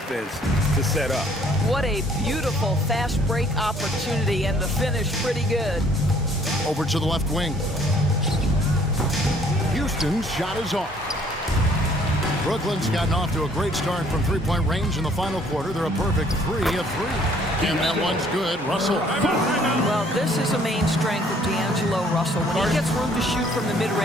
to set up. What a beautiful fast break opportunity, and the finish pretty good. Over to the left wing. Houston's shot is off. Brooklyn's gotten off to a great start from three-point range in the final quarter. They're a perfect 3 of 3. And that one's good. Russell. Well, this is a main strength of D'Angelo Russell. When he gets room to shoot from the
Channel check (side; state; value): both; normal; correlation 0.60